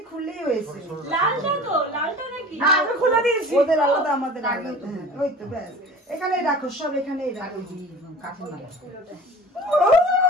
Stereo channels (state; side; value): normal; both; correlation 0.41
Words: খুললেই হয়েছে। ওদের আলাদা আমাদের ওই তো ব্যাস, এখানেই রাখো, সব এখানেই রাখো।